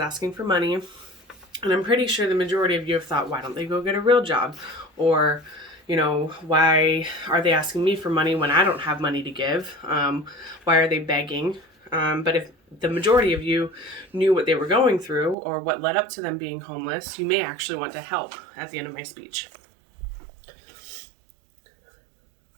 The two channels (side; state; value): left; drops out; at 15.4 s